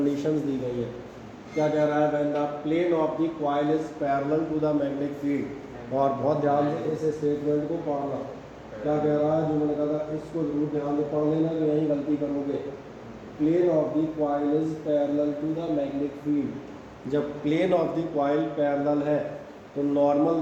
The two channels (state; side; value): identical; both; correlation 1.00